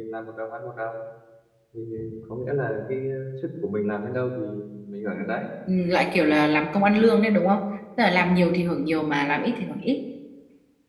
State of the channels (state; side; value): identical; both; correlation 1.00